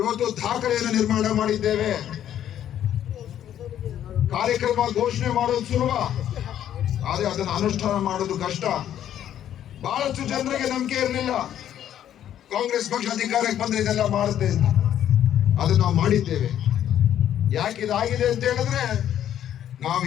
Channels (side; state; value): right; quieter; 10.7 dB